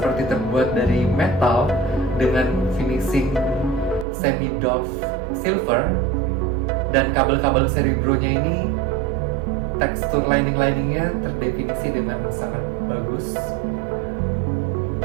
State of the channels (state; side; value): drops out; left; at 4.0 s